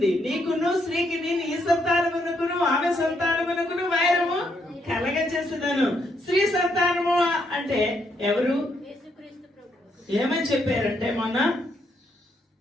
నీకును స్త్రీకి నేను ఈ సంతానమునకును ఆమె సంతానమునకును వైరము కలగ చేస్తున్నాను. స్త్రీ సంతానము అంటే ఎవరు? ఏమని చెప్పారంటే మొన్న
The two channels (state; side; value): normal; both; correlation 0.75